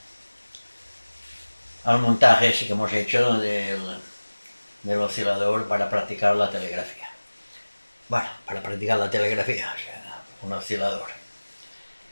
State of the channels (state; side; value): inverted; both; correlation -1.00